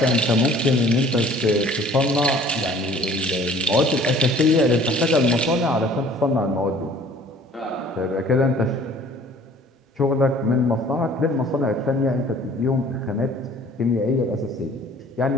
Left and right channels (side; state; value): both; normal; correlation 0.52